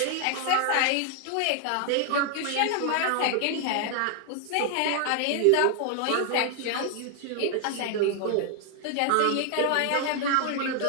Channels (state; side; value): different; both; correlation 0.00